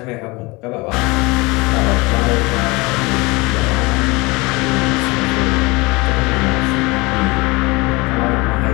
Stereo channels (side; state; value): right; quieter; 24.6 dB